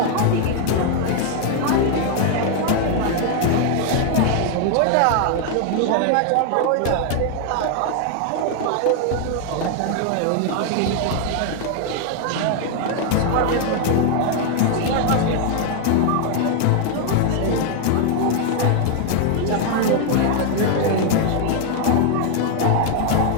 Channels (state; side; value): different; both; correlation 0.00